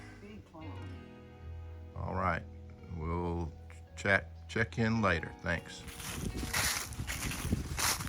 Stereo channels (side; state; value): both; identical; correlation 1.00